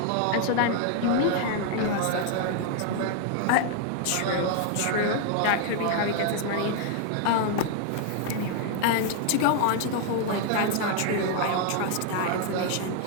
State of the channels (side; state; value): both; different; correlation 0.00